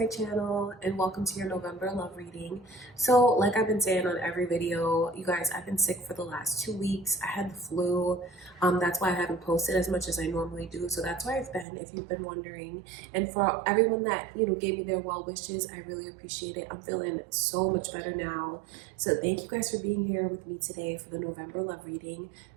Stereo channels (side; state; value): left; drops out; at 11.7 s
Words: channel and welcome to your November love reading. So like I've been saying on every video, you guys, I've been sick for the last 2 weeks. I had the flu. That's why I haven't posted as much as I normally do. So that's where I've been, if you've been wondering. And for everyone that, gave me their well wishes, I really appreciate it. I'm feeling so much better now. So thank you guys for being here with me today for the November love reading.